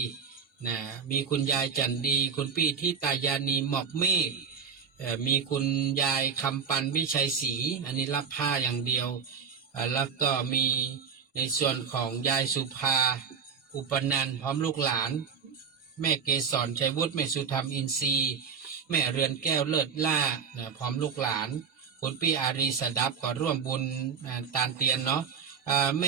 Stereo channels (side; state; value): left; quieter; 6.4 dB